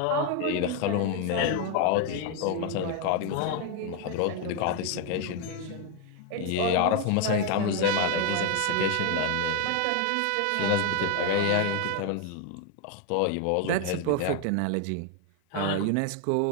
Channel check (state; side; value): different; both; correlation 0.01